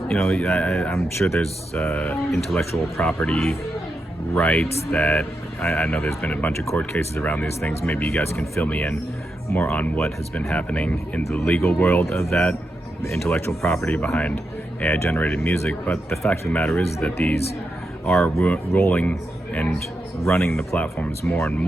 I'm sure there's intellectual property rights that I know there's been a bunch of court cases around these things. Maybe you guys can fill me in more on what has been happening in the legal world of that, the intellectual property behind AI generated music. But the fact of the matter is that these are rolling and running the platforms more and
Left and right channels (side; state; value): both; normal; correlation 0.86